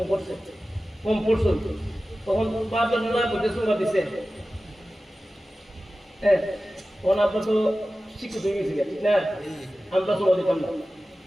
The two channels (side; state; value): both; normal; correlation 0.95